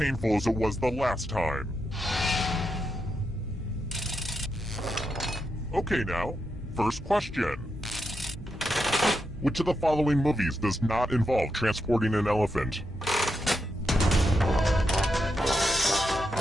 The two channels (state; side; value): normal; both; correlation 0.84